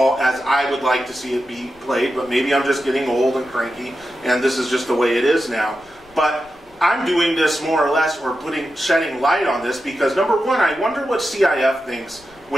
as I would like to see it be played, but maybe I'm just getting old and cranky, and this is just the way it is now. But I'm doing this more or less, or shedding light on this, because number one, I wonder what CIF thinks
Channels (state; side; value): noise; left; rumble, 28 dB below the sound